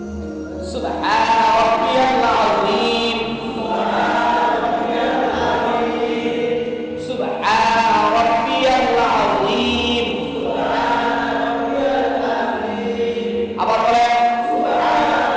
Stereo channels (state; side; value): identical; both; correlation 1.00